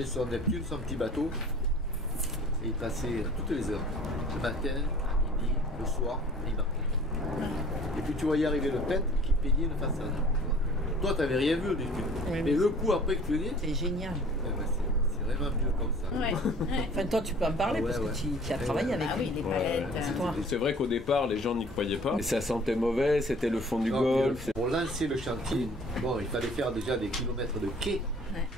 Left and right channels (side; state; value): both; normal; correlation 0.49